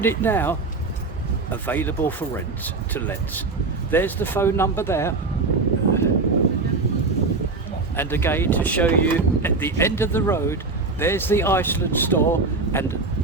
now available for rent to let. There's the phone number there. And again, to show you at the end of the road, there's the Iceland store. And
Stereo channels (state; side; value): quieter; left; 3.8 dB